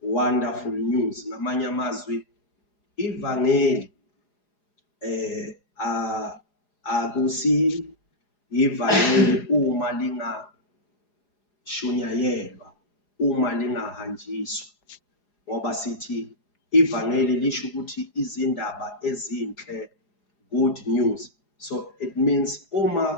Ngamanye amazwi ivangeli akusi ivangeli uma lingashunayelwa, uma lingahanjiswa, ngoba sithi ivangeli lisho ukuthi izindaba ezinhle, good news. So it means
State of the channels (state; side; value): late; right; 4.9 ms